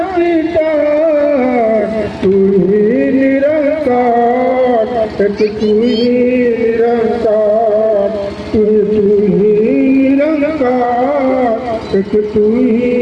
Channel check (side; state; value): both; identical; correlation 1.00